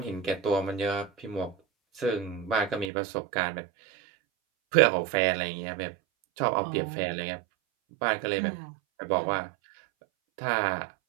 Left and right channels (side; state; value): left; drops out; at 2.9 s